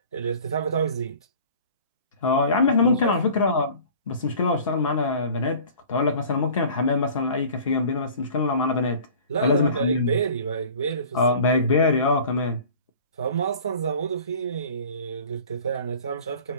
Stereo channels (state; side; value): inverted; both; correlation -0.45